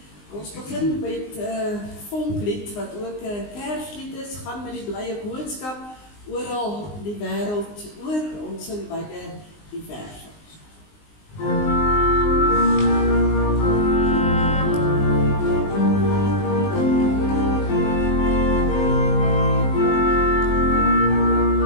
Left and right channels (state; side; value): late; right; 19 ms